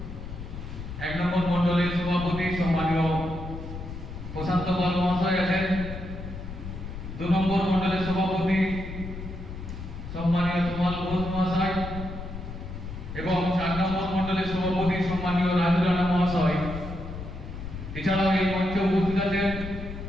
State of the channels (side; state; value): left; noise; rumble, 9 dB below the sound